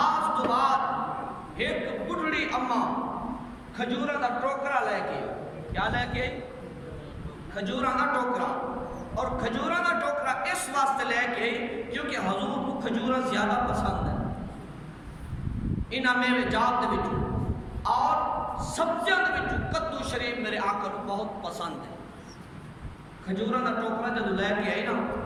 تو بعد ایک بڑھڑی اماں کھجورہ دا ٹوکرا لے کے کیا لے کے کھجورہ دا ٹوکرا اور کھجورہ دا ٹوکرا اس واسطے لے کے کیونکہ حضور کو کھجورہ زیادہ پسند ہے انہاں میں جات دے وچوں اور سبزیاں دے وچوں کدو شریف میرے آقا کو بہت پسند ہے. کھجورہ دا ٹوکرا جب لے کے آئی نا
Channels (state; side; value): identical; both; correlation 1.00